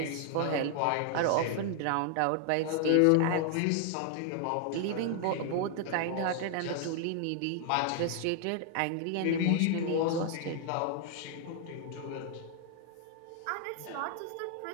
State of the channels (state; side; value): different; both; correlation 0.00